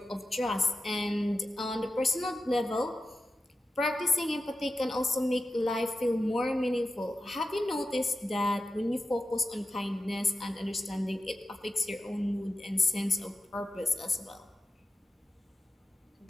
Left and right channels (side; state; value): both; normal; correlation 0.92